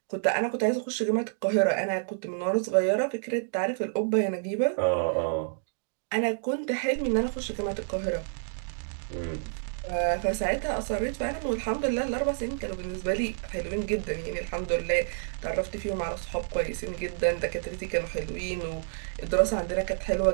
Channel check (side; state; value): left; silent; digital silence